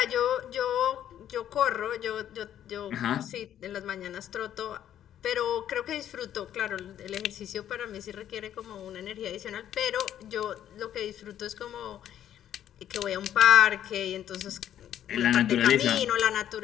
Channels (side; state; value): right; quieter; 10.8 dB